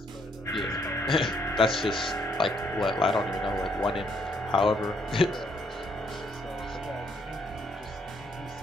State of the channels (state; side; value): normal; both; correlation 0.70